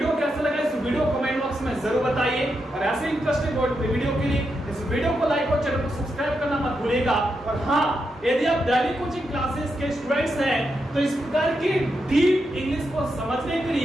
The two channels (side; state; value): both; normal; correlation 0.85